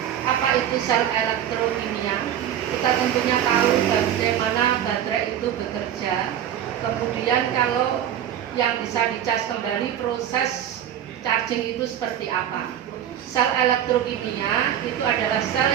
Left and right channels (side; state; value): left; quieter; 10.3 dB